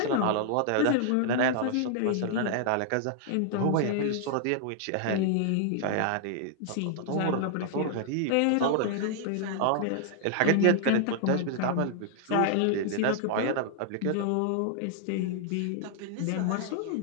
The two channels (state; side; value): different; both; correlation -0.01